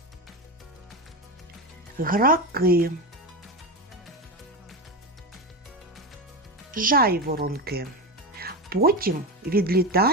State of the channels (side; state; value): both; normal; correlation 0.18